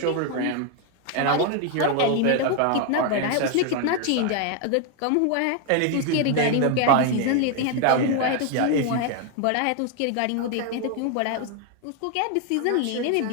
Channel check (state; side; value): different; both; correlation 0.01